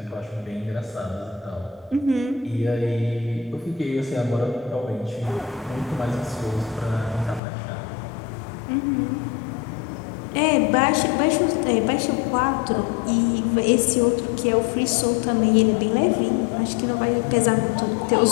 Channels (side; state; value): right; drops out; at 7.4 s